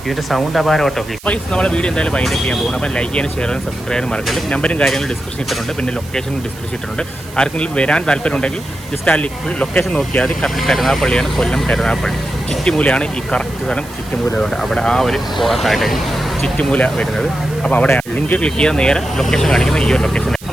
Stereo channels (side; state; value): right; noise; hiss, 19 dB below the sound